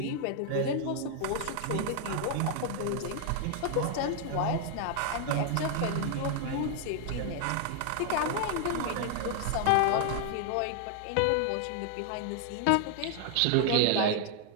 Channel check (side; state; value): both; different; correlation 0.00